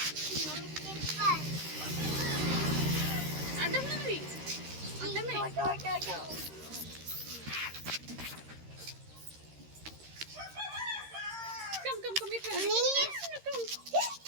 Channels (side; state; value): left; late; 13 ms